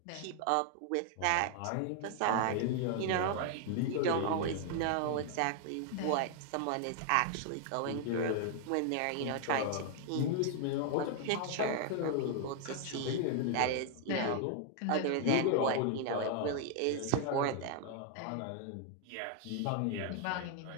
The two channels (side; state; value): both; different; correlation 0.00